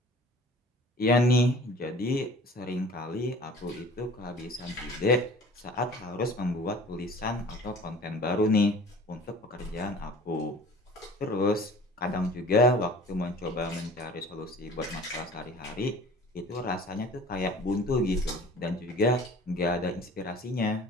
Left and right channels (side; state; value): both; normal; correlation 0.45